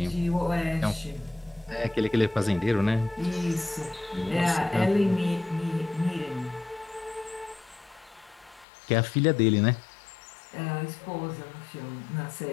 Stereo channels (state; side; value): drops out; right; at 8.7 s